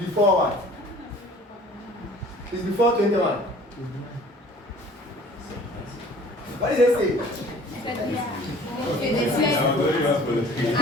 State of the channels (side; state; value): both; normal; correlation 0.49